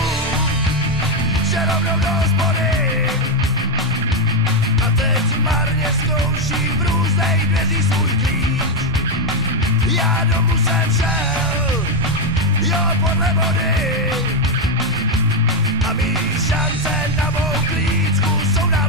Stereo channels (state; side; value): normal; both; correlation 0.05